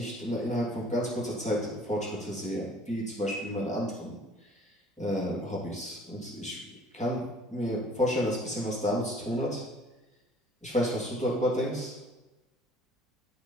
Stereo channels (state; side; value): normal; both; correlation 0.54